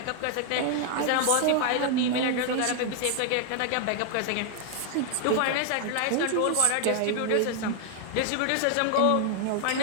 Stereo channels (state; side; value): different; both; correlation 0.00